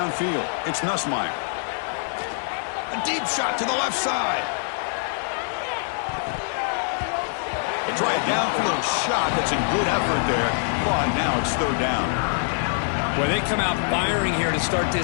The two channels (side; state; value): right; silent; digital silence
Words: it's Nussmeier. A deep shot to the left side. They try a downfield shot. That's a good effort there, but now it's 3rd down. Well, they come out firing here to start